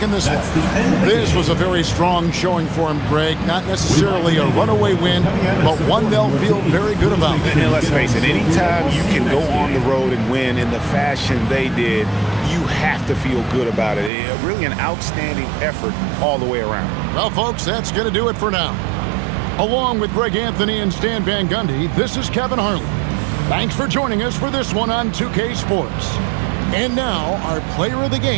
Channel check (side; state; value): left; drops out; at 14.1 s